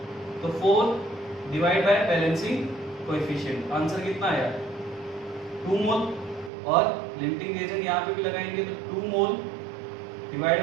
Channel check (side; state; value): left; drops out; at 6.5 s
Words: तो 4 divide by balancing coefficient, answer कितना आया? 2 मोल। और लिमिटिंग रिएजेंट यहाँ पे भी लगाएंगे तो 2 मोल divide